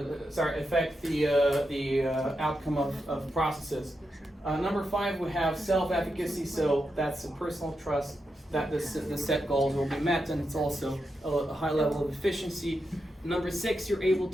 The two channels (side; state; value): both; normal; correlation 0.86